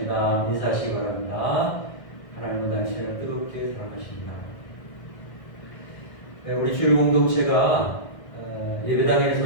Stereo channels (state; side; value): late; right; 1.6 ms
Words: 인사하시기 바랍니다. 하나님은 당신을 뜨겁게 사랑하십니다. 우리 주일 공동체가